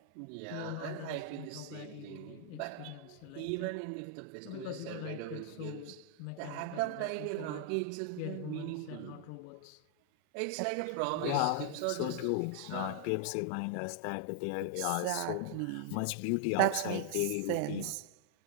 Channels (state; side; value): different; both; correlation 0.00